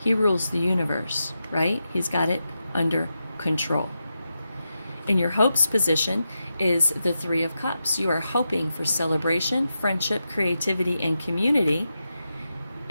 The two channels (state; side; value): inverted; both; correlation -0.89